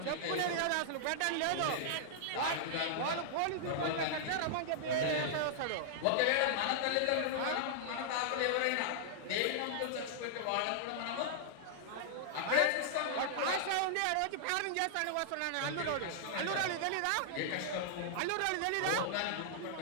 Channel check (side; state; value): both; different; correlation -0.01